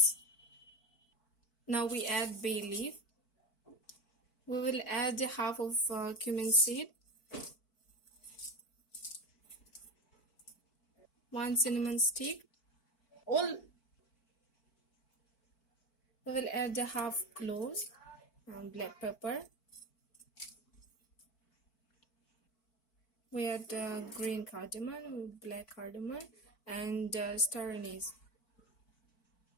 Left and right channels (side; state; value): right; late; 4.5 ms